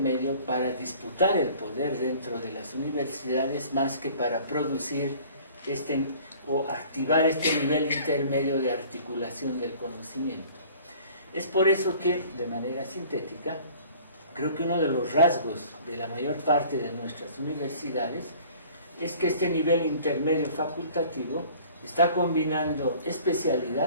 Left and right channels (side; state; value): both; inverted; correlation -0.49